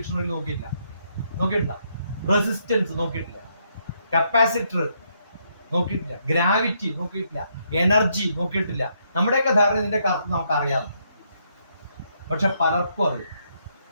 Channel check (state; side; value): inverted; both; correlation -0.75